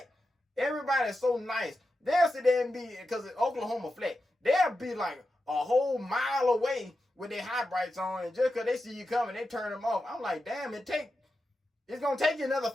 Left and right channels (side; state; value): both; normal; correlation 0.90